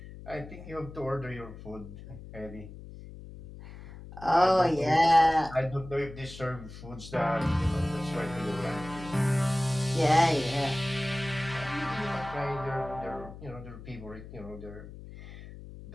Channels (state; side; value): noise; left; hum, 14 dB below the sound